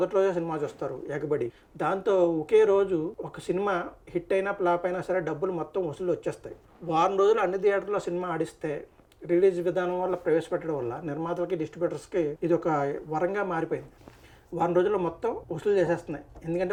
రోజే సినిమా చూస్తారు ఎగబడి. దాంతో ఒకే రోజు ఒక సినిమా హిట్ అయినా ఫ్లాప్ అయినా సరే డబ్బులు మొత్తం వసూలు వచ్చేస్తాయి. వారం రోజులు అన్ని థియేటర్లో సినిమా ఆడిస్తే రిలీజ్ విధానం వల్ల ప్రవేశపెట్టడం వల్ల నిర్మాతలకి, డిస్ట్రిబ్యూటర్స్కి ఇది ఒక వరంగా మారిపోయింది. వారం రోజుల్లో మొత్తం వసూలు చేసేస్తున్నాయి.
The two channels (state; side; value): identical; both; correlation 1.00